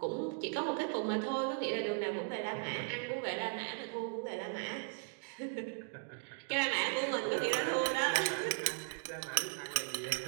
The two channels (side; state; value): left; silent; 53 dB below the other